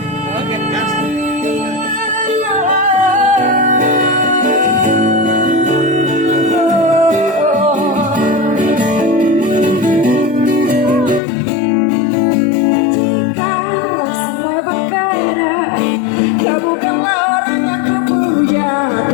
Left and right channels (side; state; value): right; drops out; at 11.2 s